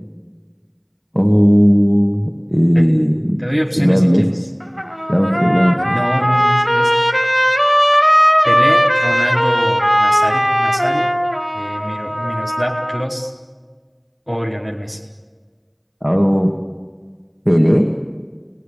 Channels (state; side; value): identical; both; correlation 1.00